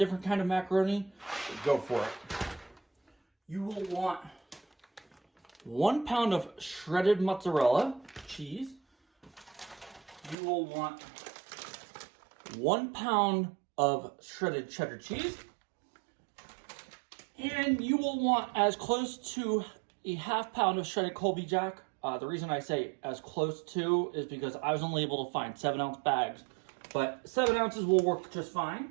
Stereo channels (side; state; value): left; drops out; at 10.4 s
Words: kind of macaroni, go for it. You will want 1 pound of shredded mozzarella cheese. You will want 1 pound of shredded cheddar cheese. And you will want as close to a ½ pound of shredded Colby Jack. The reason I say as close to is because I was only able to find 7-ounce bags, but 7 ounces will work just